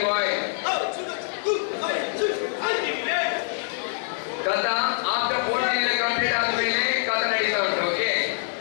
boys. ಕಥಾ after 14 year complete ಆದ್ಮೇಲೆ ಕಥಾ ನಡೀತಾ ಉಂಟು. Okay,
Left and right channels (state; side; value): silent; right; digital silence